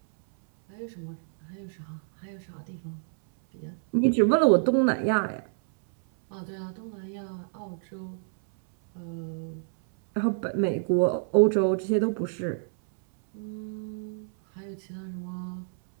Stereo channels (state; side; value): silent; left; 59 dB below the other